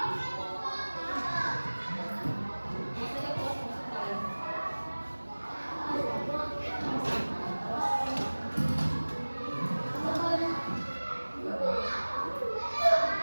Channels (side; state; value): both; inverted; correlation -1.00